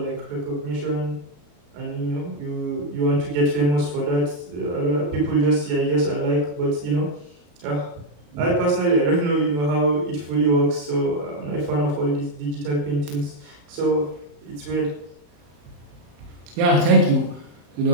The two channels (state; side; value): late; left; 34 ms